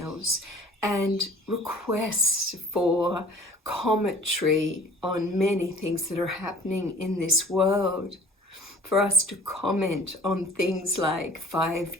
and requests for commentary on many things that are happening in this world. For us to comment on things like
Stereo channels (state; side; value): normal; both; correlation 0.48